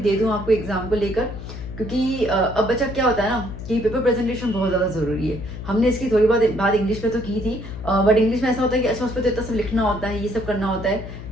दूँ आपको एग्जाम को लेकर, क्योंकि अब बच्चा क्या होता है ना कि पेपर प्रेजेंटेशन बहुत ज़्यादा ज़रूरी है। हमने इसकी थोड़ी बहुत बात इंग्लिश में तो की थी, बट इंग्लिश में ऐसा होता है कि अच्छा उस पर तो इतना सब लिखना होता है, ये सब करना होता है।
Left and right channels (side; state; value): left; noise; hum, 10 dB below the sound